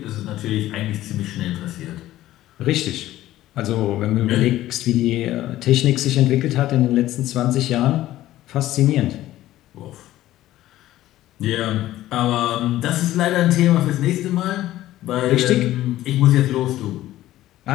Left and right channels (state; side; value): quieter; right; 14.7 dB